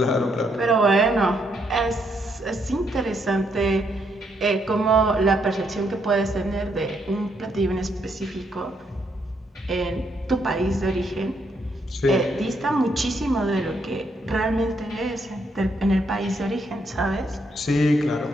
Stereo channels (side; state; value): both; normal; correlation 0.75